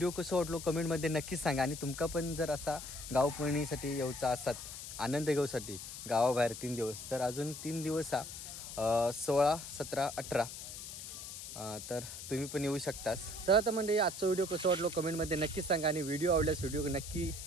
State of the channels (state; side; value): noise; left; hiss, 10 dB below the sound